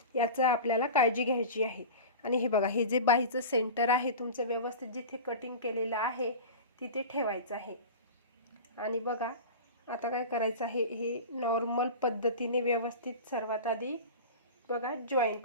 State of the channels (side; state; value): both; inverted; correlation -0.31